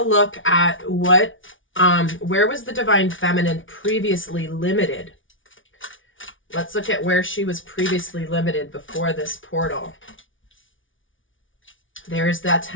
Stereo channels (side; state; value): right; late; 0.57 ms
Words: look at what, where was the divine feminine previously limited? Let's look at where she was previously limited before this portal. There's that